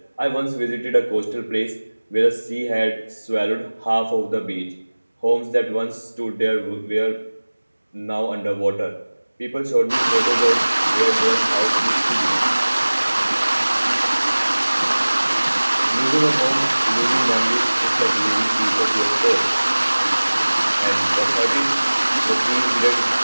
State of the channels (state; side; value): inverted; both; correlation -1.00